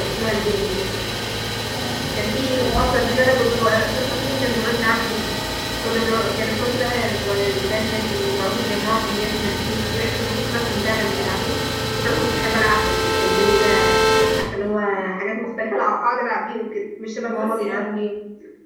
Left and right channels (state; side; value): identical; both; correlation 1.00